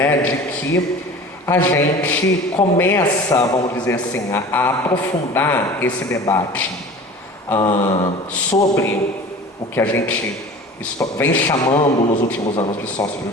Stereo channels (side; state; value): both; normal; correlation 0.40